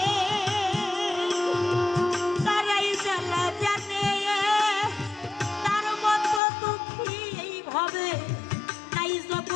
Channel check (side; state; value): right; drops out; at 6.4 s